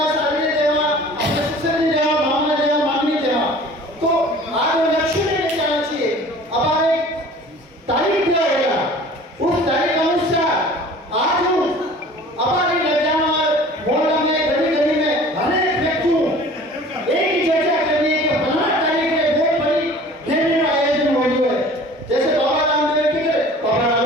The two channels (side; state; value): both; normal; correlation 0.46